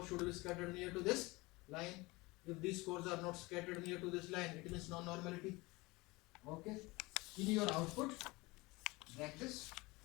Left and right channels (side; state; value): right; quieter; 23.0 dB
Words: should be scattered near to this line. If these scores are not scattered near to this line, it means non-normality. Okay. In your output, like this.